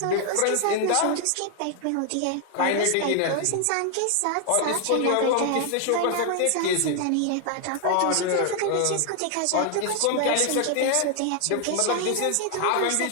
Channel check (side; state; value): both; different; correlation 0.00